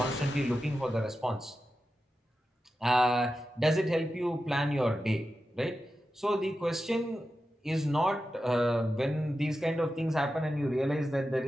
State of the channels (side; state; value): both; normal; correlation 0.91